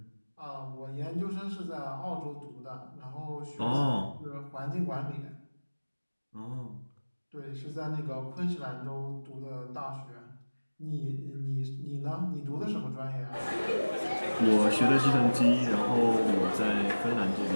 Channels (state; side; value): inverted; both; correlation -1.00